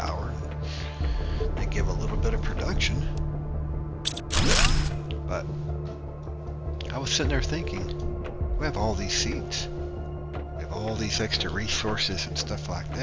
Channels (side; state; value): both; identical; correlation 1.00